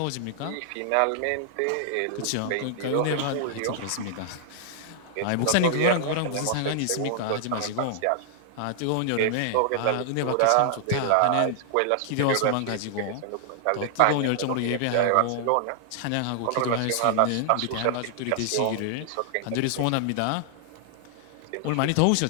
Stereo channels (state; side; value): different; both; correlation -0.01